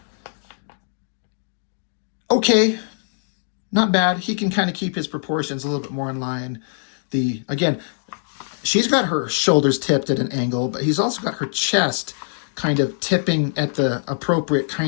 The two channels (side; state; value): right; silent; digital silence